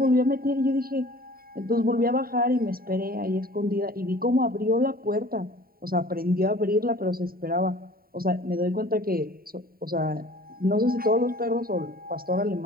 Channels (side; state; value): left; late; 0.43 ms